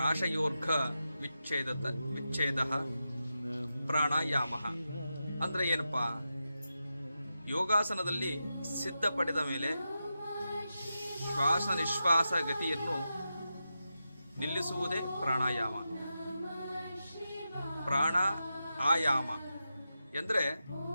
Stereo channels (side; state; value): both; inverted; correlation -0.89